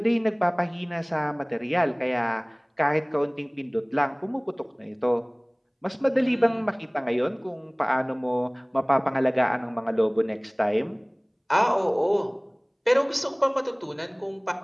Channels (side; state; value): both; identical; correlation 1.00